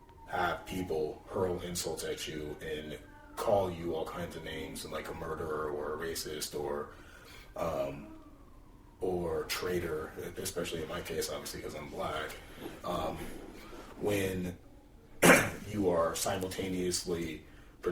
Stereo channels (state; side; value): identical; both; correlation 1.00